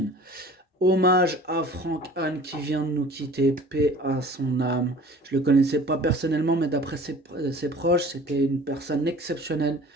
Hommage à Franck Anne qui vient de nous quitter, paix à son âme. Je le connaissais pas personnellement, mais d'après ses proches, c'était une personne exceptionnelle,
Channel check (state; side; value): normal; both; correlation 0.45